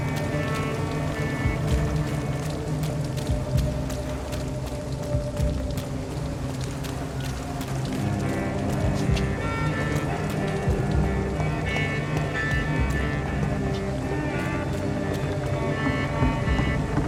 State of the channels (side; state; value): both; identical; correlation 1.00